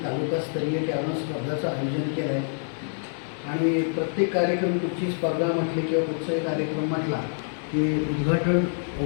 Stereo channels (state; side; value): silent; right; digital silence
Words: तालुकास्तरीय कॅरम स्पर्धाचं आयोजन केलं आहे. आणि प्रत्येक कार्यक्रम कुठची स्पर्धा म्हटली किंवा कुठचाही कार्यक्रम म्हटला की उद्घाटन